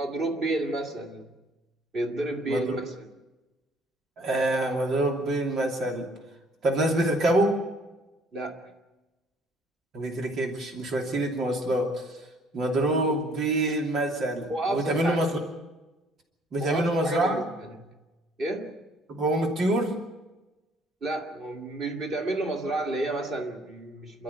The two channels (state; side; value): normal; both; correlation 0.60